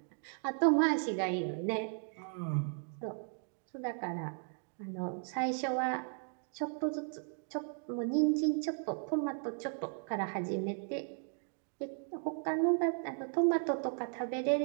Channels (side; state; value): left; silent; 54 dB below the other